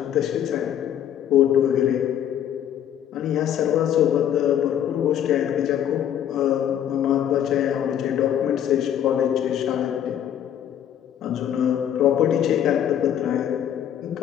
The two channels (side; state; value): right; quieter; 10.1 dB